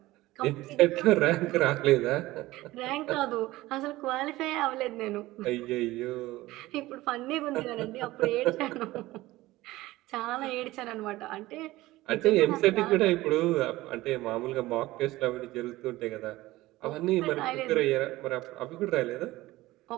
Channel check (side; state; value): left; quieter; 18.0 dB